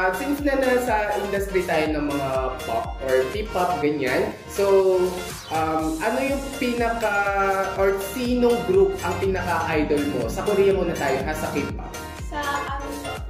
since na nasa industry tayo ng mga pop or P-pop, ganyan, so, ano yung or sinong group ang pinaka-idol mo? Sa Korea muna tayo, ha? Sa K-pop? Sa,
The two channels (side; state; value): both; identical; correlation 1.00